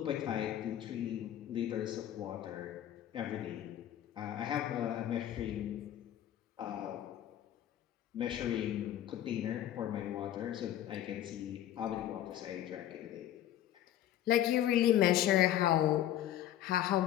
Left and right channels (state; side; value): quieter; right; 12.0 dB